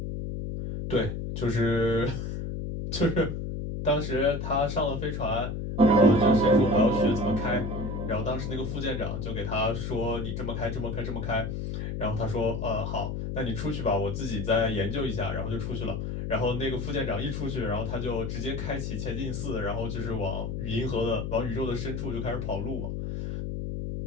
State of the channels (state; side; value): noise; left; hum, 4 dB below the sound